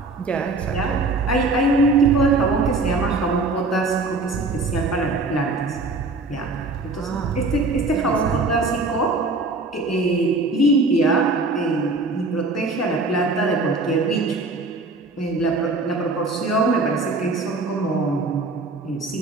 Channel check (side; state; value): left; quieter; 3.3 dB